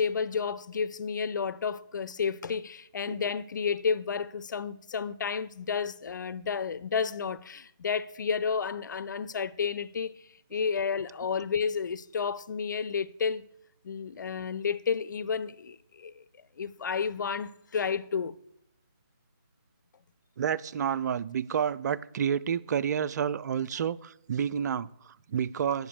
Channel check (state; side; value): inverted; both; correlation -0.49